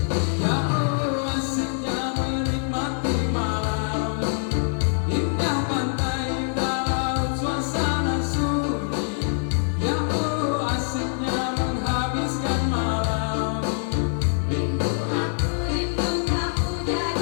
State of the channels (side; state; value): right; silent; digital silence